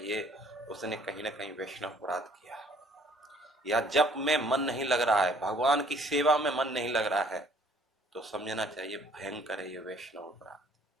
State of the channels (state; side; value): normal; both; correlation 0.59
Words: उसने कहीं ना कहीं वैष्णव अपराध किया, या जप में मन नहीं लग रहा है, भगवान की सेवा में मन नहीं लग रहा है, तो समझना चाहिए भयंकर है ये वैष्णव अपराध।